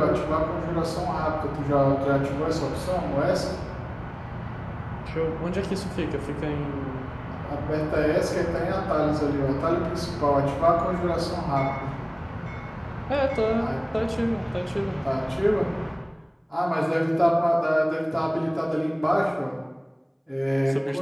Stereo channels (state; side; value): identical; both; correlation 1.00